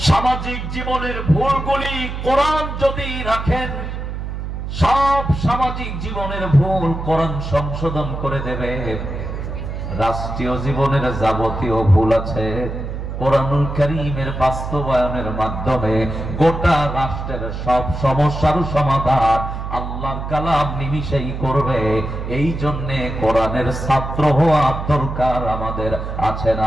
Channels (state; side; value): noise; right; hum, 6 dB below the sound